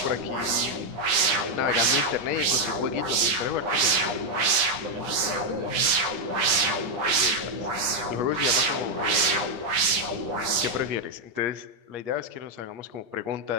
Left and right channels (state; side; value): late; left; 9.8 ms